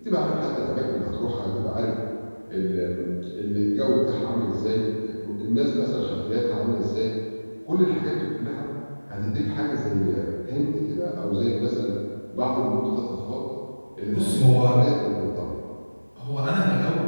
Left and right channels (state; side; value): inverted; both; correlation -1.00